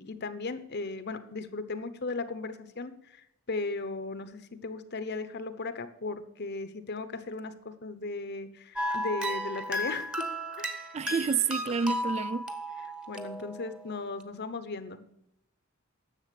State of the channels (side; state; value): both; normal; correlation 0.32